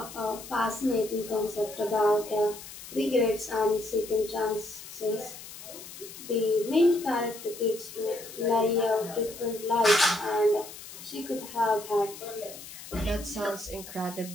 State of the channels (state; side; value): noise; left; hiss, 14 dB below the sound